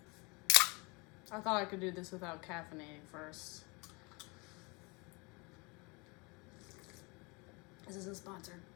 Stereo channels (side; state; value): right; quieter; 28.7 dB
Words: I thought I could do this without caffeinating first. This isn't sponsored.